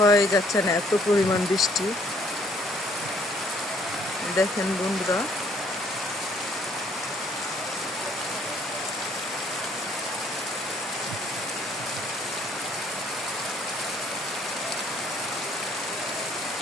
যাচ্ছে না, এত পরিমাণ বৃষ্টি। দেখেন বন্ধুরা,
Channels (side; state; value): both; normal; correlation 0.63